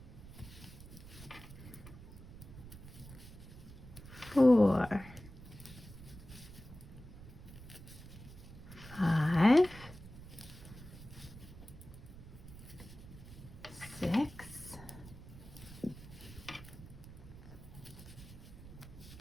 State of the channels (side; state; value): right; noise; rumble, 15 dB below the sound